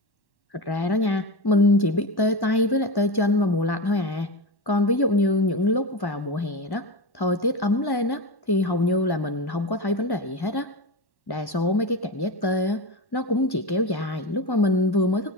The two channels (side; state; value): right; late; 1.1 ms